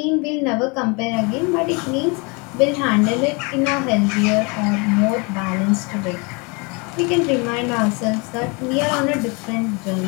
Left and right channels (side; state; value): right; quieter; 30.4 dB